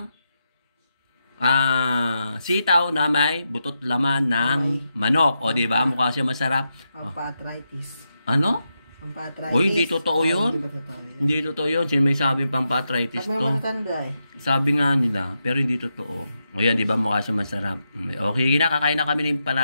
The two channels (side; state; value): both; inverted; correlation -0.86